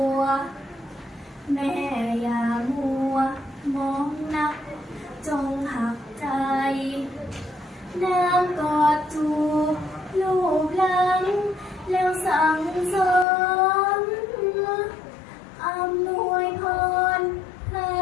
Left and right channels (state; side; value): drops out; right; at 13.2 s